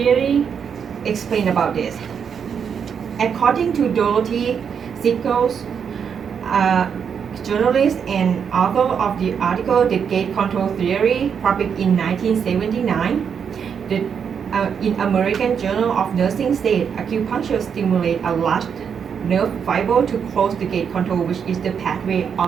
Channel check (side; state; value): left; quieter; 7.1 dB